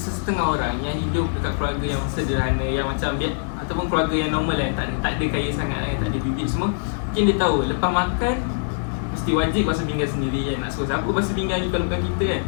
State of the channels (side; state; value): right; silent; 63 dB below the other